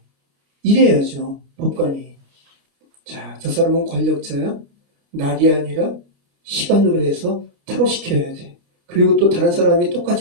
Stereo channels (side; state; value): left; late; 25 ms